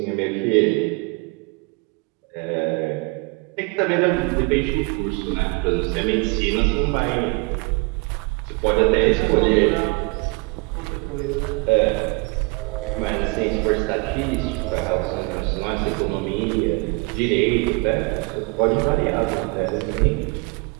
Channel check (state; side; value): quieter; left; 28.9 dB